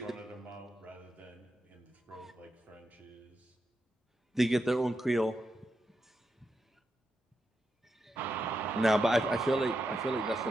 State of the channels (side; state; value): both; normal; correlation 0.85